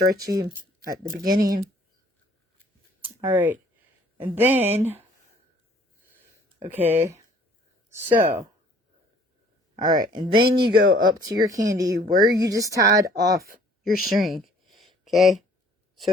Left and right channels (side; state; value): both; normal; correlation 0.56